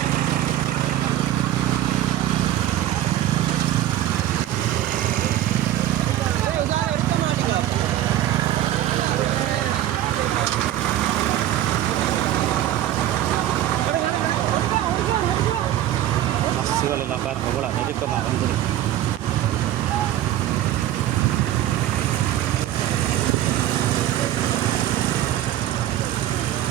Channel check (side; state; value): left; quieter; 12.7 dB